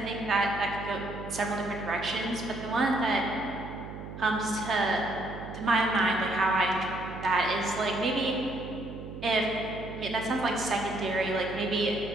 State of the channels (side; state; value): right; noise; hum, 11 dB below the sound